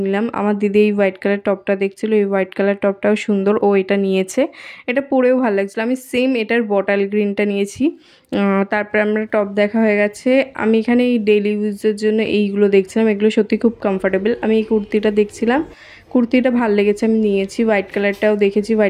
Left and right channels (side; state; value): both; identical; correlation 1.00